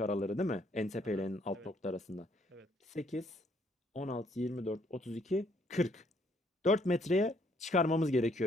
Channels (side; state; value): both; normal; correlation 0.67